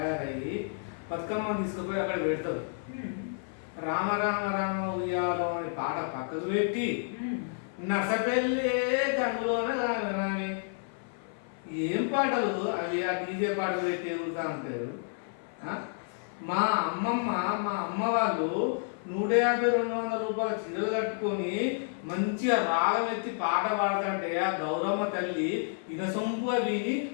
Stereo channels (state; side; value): silent; right; 55 dB below the other